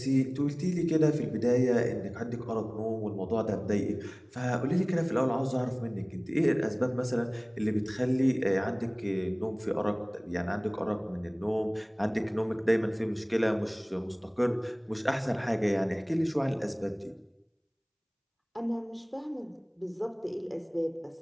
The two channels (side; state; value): both; identical; correlation 1.00